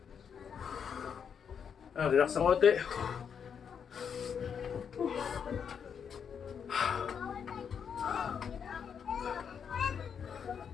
Relax ng konti.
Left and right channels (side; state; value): right; quieter; 7.2 dB